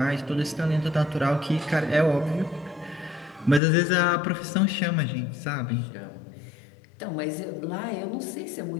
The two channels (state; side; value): drops out; right; at 3.6 s